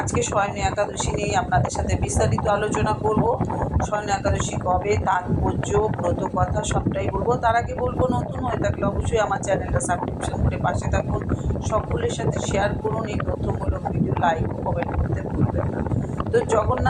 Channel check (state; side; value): identical; both; correlation 1.00